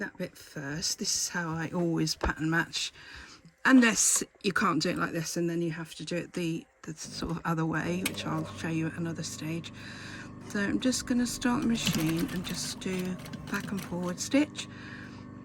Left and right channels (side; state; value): both; identical; correlation 1.00